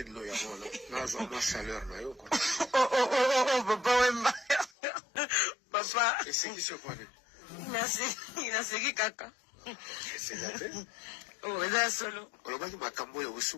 de l'eau, il y a chaleur, là, Oh, papa Wemba. Papa. Et c'est qui se connaît? Il a seguido caca. C'est la paix. Oh, là, solo. Olobaki makambo ya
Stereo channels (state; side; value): drops out; right; at 4.7 s